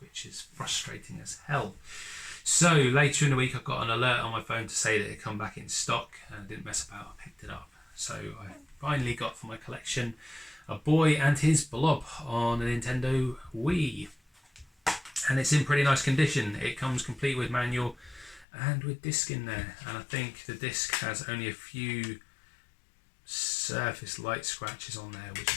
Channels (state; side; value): drops out; right; at 18.4 s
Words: which is frustrating as hell. So later in the week I got an alert on my phone to say that it had come back in stock, and I didn't mess about, I picked it up. So I finally got for my collection a Boy and His Blob on a Nintendo Wii. And it's in pretty nice condition. It comes complete with manual and with disc in there. And I think the disc has only a few surface light scratches on there, which